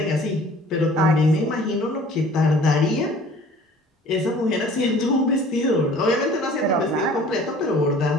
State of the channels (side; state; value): both; normal; correlation 0.50